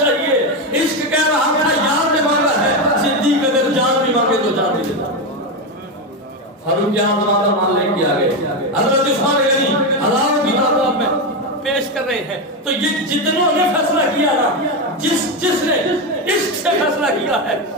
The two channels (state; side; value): normal; both; correlation 0.12